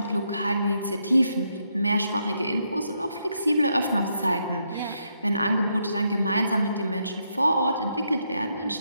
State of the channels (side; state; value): both; inverted; correlation -0.78